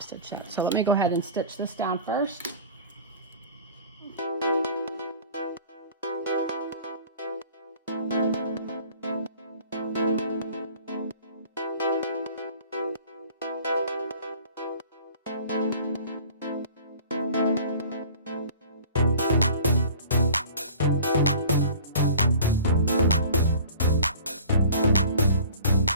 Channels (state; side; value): inverted; both; correlation -0.44